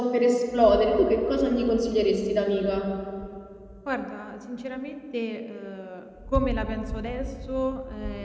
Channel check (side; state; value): both; identical; correlation 1.00